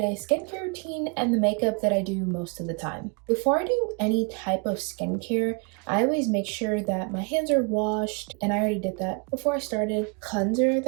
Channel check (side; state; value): left; quieter; 33.6 dB